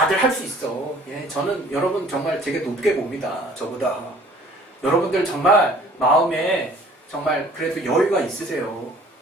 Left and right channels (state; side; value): normal; both; correlation 0.53